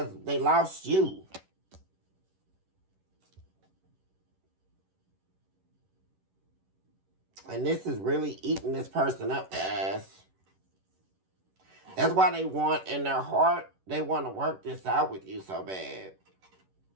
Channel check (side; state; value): left; late; 11 ms